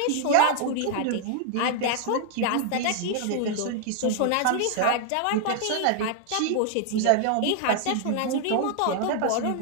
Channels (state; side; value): different; both; correlation 0.00